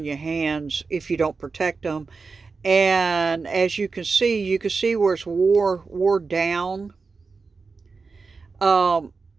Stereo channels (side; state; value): left; quieter; 4.5 dB